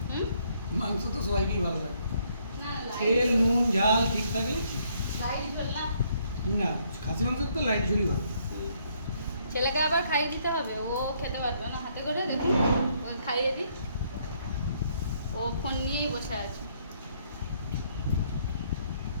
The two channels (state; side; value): inverted; both; correlation -0.69